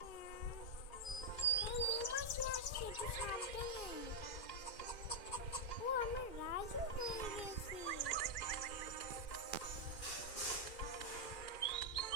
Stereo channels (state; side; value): late; right; 2.4 ms